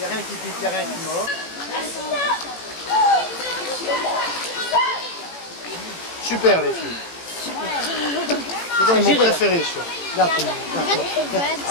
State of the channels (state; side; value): late; right; 18 ms